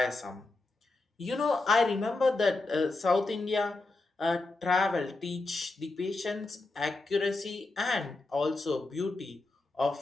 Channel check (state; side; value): quieter; right; 3.2 dB